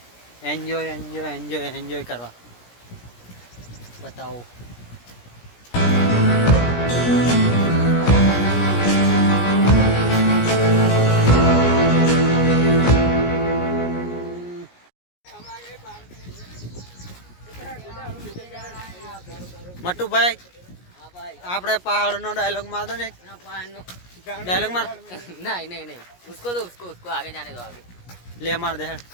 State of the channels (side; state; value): right; late; 17 ms